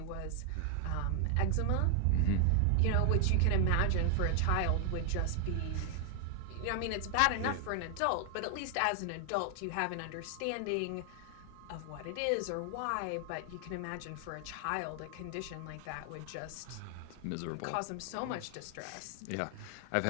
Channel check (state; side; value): different; both; correlation 0.00